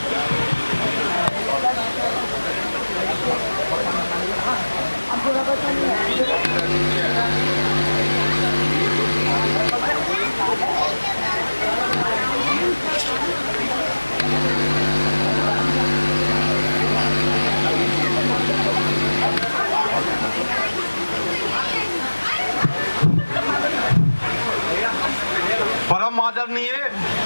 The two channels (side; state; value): both; inverted; correlation -1.00